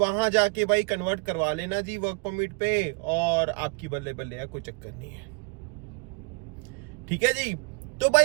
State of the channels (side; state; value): left; quieter; 31.5 dB